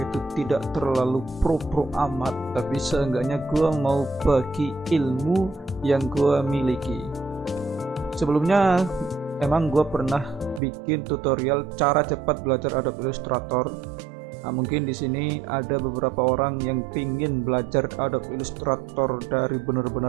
itu tidak terlalu pro amat, tapi seenggaknya gua mau bagi ilmu yang gua miliki. Sebelumnya emang gua pernah bikin tutorial cara cepat belajar Adobe Illustrator. Nah, mungkin di sini ada beberapa orang yang pingin belajar Adobe Illustrator dari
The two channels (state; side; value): drops out; left; at 10.6 s